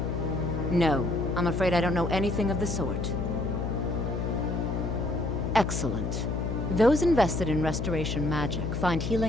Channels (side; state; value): left; noise; hum, 2 dB below the sound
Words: No, I'm afraid I don't know anything of the sort. Excellent. Those invested in restoration magic find